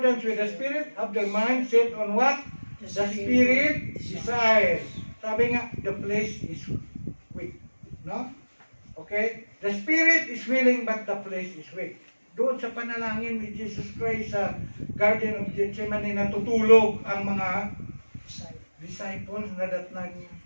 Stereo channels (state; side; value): inverted; both; correlation -1.00